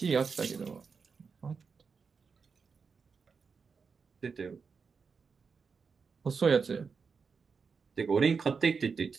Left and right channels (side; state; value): left; quieter; 5.4 dB